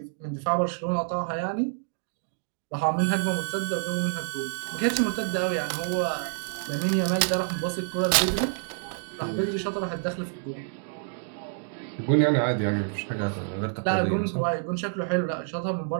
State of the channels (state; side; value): silent; left; digital silence